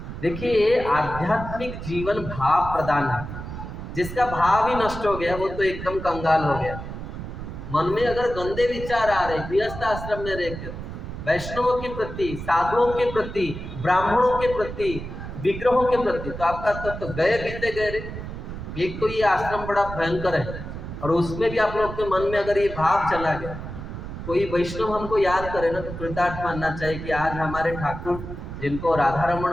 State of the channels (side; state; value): right; noise; rumble, 9 dB below the sound